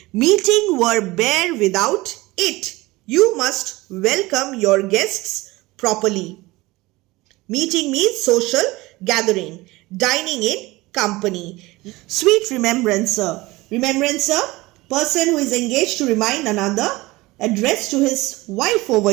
Meeting were bare without it. You must welcome your guests properly. Meeting means social gathering. Dining in company. Sweet remembrancer. Remembrancer, person who is engaged to remind another, addressed to his wife over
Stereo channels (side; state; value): left; quieter; 20.7 dB